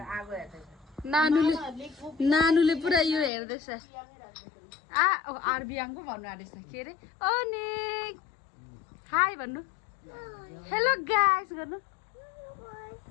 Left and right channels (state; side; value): drops out; right; at 3.3 s